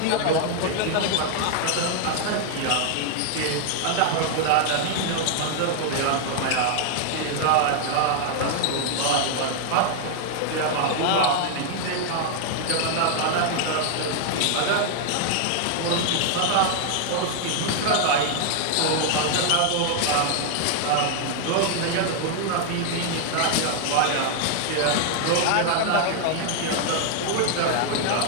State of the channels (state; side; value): different; both; correlation 0.00